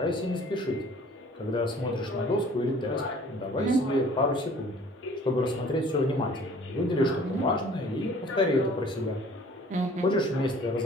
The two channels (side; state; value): both; normal; correlation 0.51